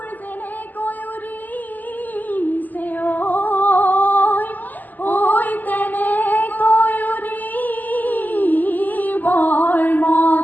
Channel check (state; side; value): late; right; 0.084 ms